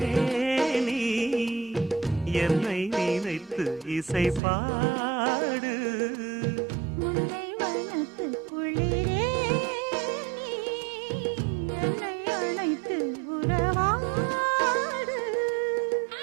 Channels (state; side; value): drops out; left; at 4.4 s